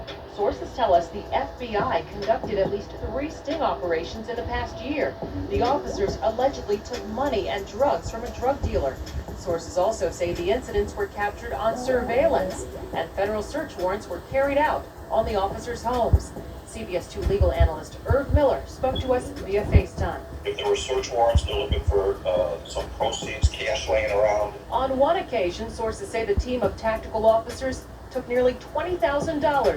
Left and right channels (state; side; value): identical; both; correlation 1.00